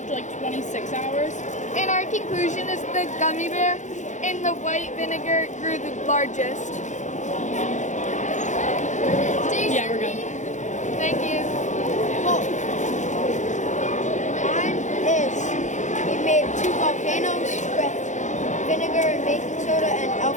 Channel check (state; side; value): late; right; 0.35 ms